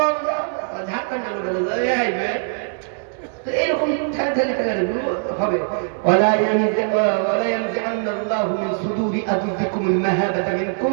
ঝাড়খণ্ডের লোকেরা এরকম হবে। ولا ينزعن الله من صدور أعدائكم المهابة منكم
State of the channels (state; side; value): silent; left; 64 dB below the other